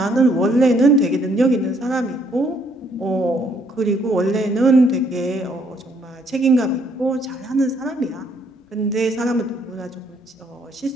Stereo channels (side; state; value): both; normal; correlation 0.68